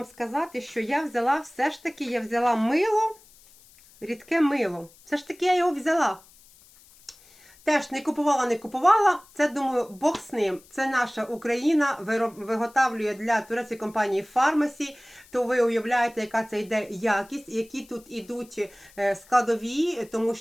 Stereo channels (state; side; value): noise; left; hiss, 26 dB below the sound